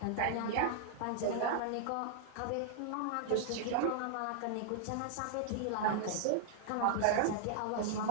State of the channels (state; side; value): different; both; correlation -0.01